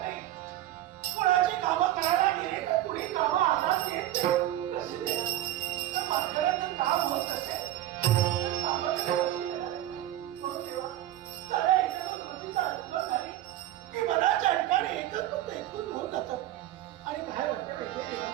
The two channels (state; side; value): quieter; left; 13.8 dB